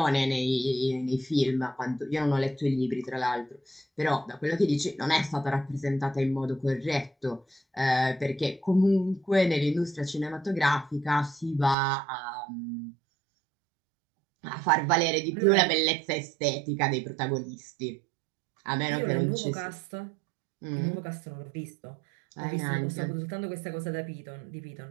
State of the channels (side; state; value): left; drops out; at 11.8 s